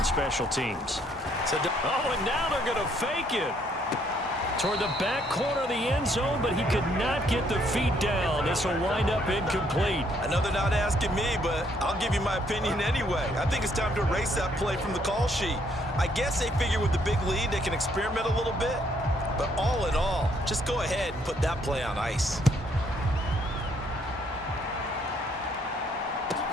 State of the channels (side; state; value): both; normal; correlation 0.68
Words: special teams. So, and now they're going to fake it. Toward the back corner of the end zone, but he could not get the feet down. This will wind up incomplete. I know they're not asking me, but I'll give you my opinion anyway. I think it's time to erase that play from the call sheet. I guess they figure with the big lead they can experiment a little bit. But all in all, just go ahead and put that play on ice.